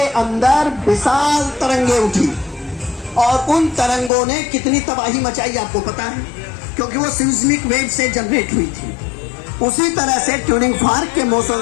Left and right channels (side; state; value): right; drops out; at 4.1 s